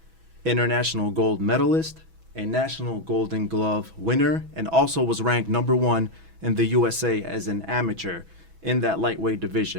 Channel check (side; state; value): left; late; 6.1 ms